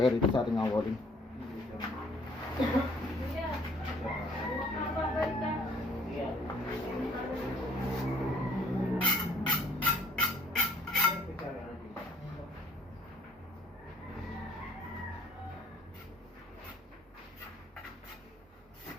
rito sa ating walling.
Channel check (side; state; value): both; normal; correlation 0.59